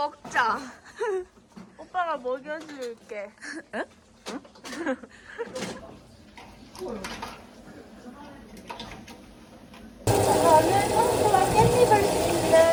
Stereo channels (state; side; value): identical; both; correlation 1.00